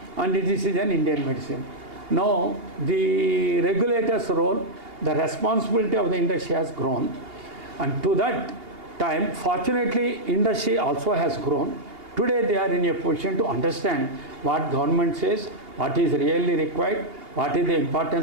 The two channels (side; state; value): left; late; 2.8 ms